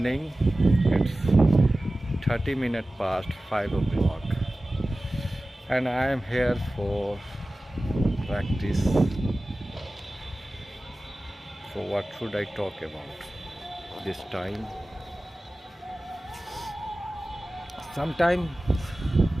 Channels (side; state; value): both; normal; correlation 0.96